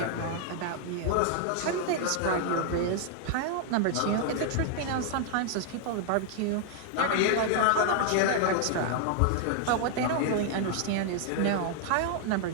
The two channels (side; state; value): both; different; correlation 0.00